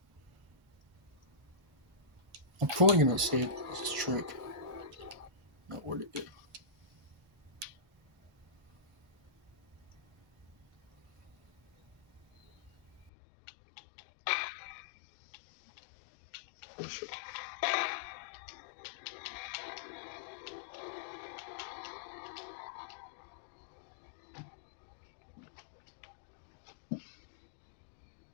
I'm probably gonna say this trick. Not where to get. For sure.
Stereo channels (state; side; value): drops out; right; at 13.1 s